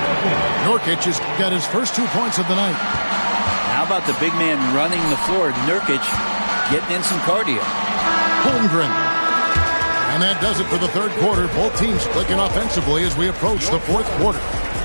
Nurkic has got his first 2 points of the night. How about the big man running the floor? Nurkic getting in some cardio. Holmgren. And that does it for the third quarter. Both teams clicking offensively as we approach the fourth quarter.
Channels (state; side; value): inverted; both; correlation -1.00